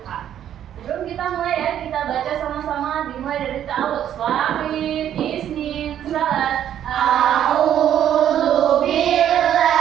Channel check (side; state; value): left; quieter; 10.4 dB